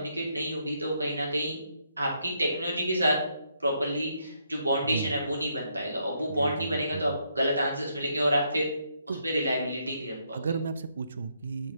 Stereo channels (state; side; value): inverted; both; correlation -0.75